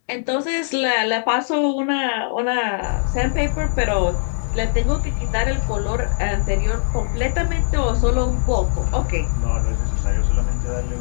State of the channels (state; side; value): silent; right; 65 dB below the other